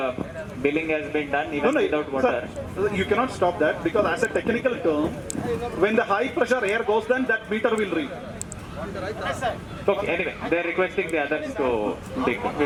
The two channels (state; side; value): identical; both; correlation 1.00